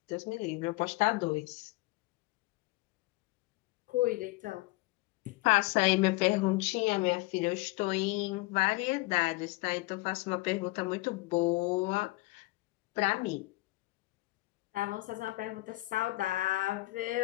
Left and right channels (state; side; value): quieter; right; 21.6 dB